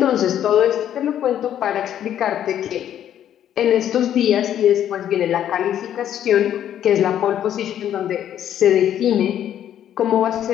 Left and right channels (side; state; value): right; quieter; 10.5 dB